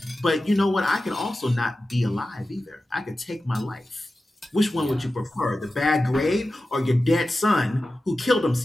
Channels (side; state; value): both; normal; correlation 0.94